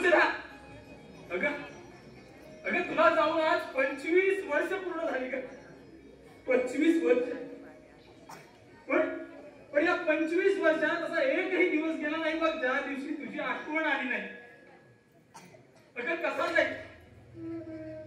अगं अगं तुला जाऊन आज 25 वर्ष पूर्ण झाली का? 25 वर्ष. पण या 25 वर्षात असा एकही दिवस गेला नाही बघ ज्या दिवशी तुझी आठवण आली नाही. अगं कसा जाईल,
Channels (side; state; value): both; identical; correlation 1.00